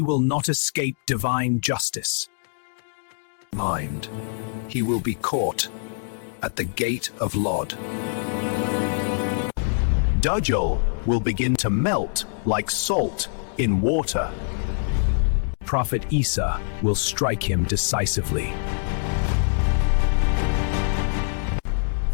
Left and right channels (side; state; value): right; silent; digital silence